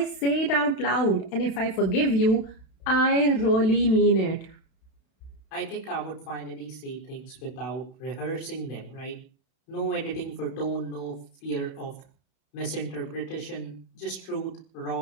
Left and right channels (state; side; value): late; right; 31 ms